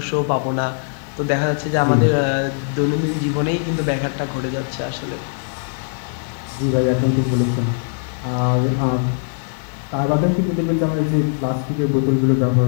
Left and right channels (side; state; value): right; silent; digital silence